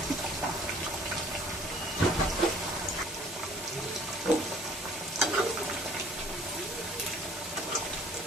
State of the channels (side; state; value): both; normal; correlation 0.54